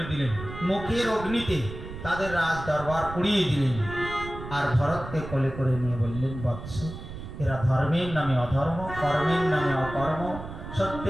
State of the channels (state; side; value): noise; right; rumble, 11 dB below the sound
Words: দিলেন, মুখের অগ্নিতে তাদের রাজ দরবার উড়িয়ে দিলেন। আর ভরতকে কোলে করে নিয়ে বললেন, বৎস, এরা ধর্মের নামে অধর্ম, কর্মের নামে অকর্ম,